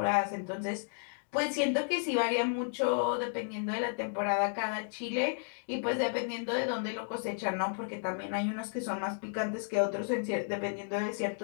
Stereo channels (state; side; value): silent; right; digital silence